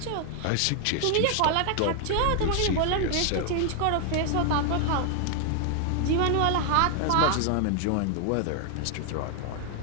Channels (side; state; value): both; different; correlation 0.00